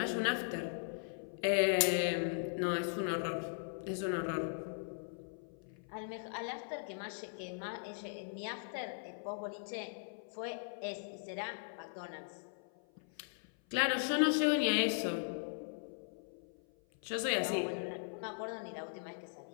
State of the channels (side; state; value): right; silent; 52 dB below the other